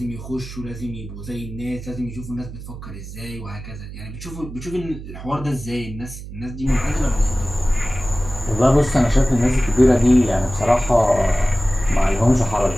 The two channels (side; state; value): right; noise; hum, 12 dB below the sound